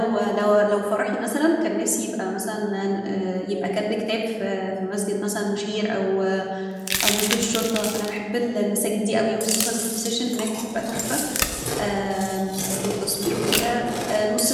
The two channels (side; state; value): both; identical; correlation 1.00